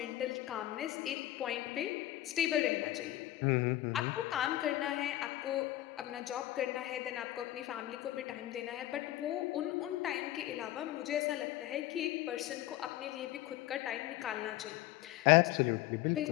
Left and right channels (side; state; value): right; quieter; 15.1 dB